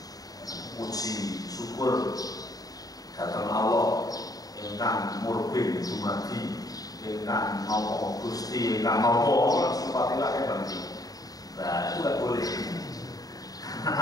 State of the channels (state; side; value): late; right; 0.18 ms